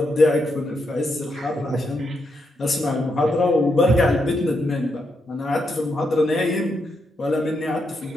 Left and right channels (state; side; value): normal; both; correlation 0.81